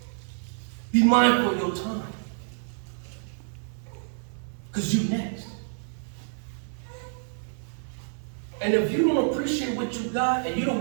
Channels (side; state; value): left; silent; digital silence